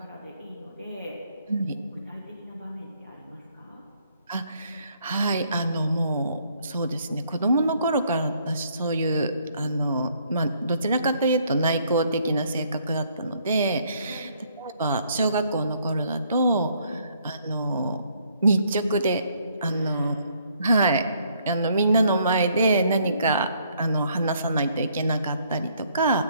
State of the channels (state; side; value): inverted; both; correlation -0.67